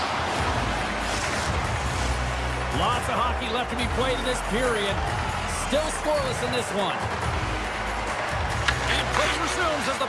of hockey left to be played in this period. Still scoreless in this one. And play resumes as the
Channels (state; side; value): identical; both; correlation 1.00